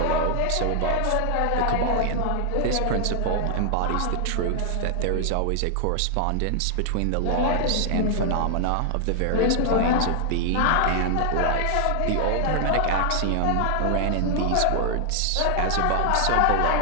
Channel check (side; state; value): both; different; correlation 0.00